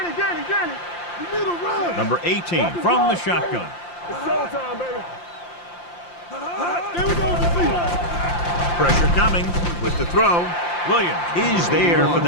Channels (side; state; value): right; late; 5.8 ms